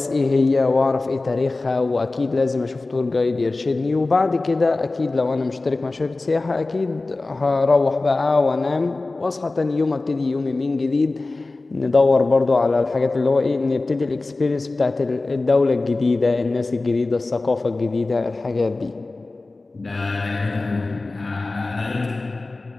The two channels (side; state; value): right; quieter; 3.3 dB